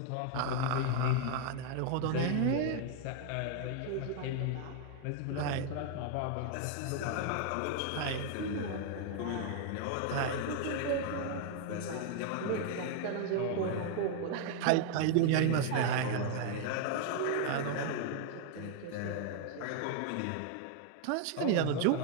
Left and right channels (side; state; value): both; different; correlation 0.00